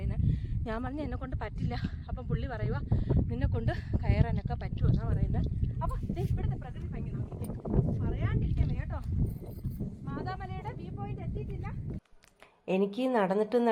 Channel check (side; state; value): both; identical; correlation 1.00